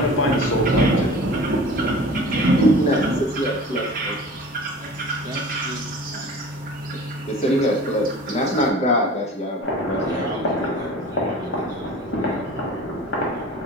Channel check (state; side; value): normal; both; correlation 0.41